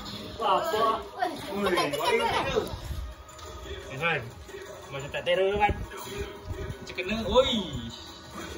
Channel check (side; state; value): both; identical; correlation 1.00